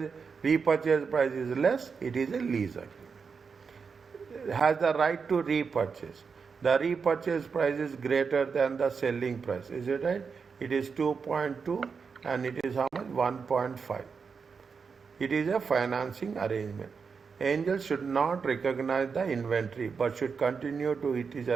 repurchase price is less, it is a lease agreement. It has the right to repurchase. The repurchase price is greater than the selling price. Is it right? It is 2.2 and it is how much? 1.5. It is a financing arrangement. Angel should not recognize the inventory but should continue to it is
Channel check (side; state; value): left; quieter; 5.5 dB